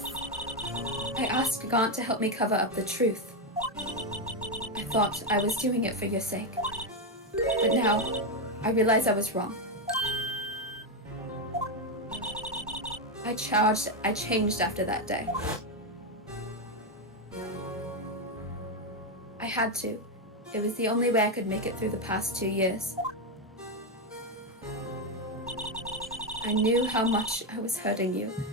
I asked Gaunt to help me cover up the truth. I thought I was doing it for your sake. But now, I realize I was wrong. I changed after that day. I had to. It was the only way I could make it through the past 2 years. I knew how much I was hurting you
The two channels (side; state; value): both; normal; correlation 0.06